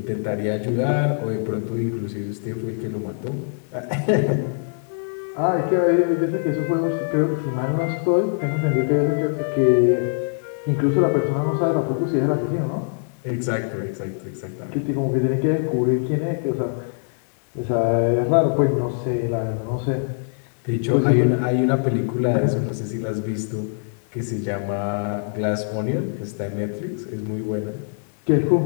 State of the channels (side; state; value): right; silent; digital silence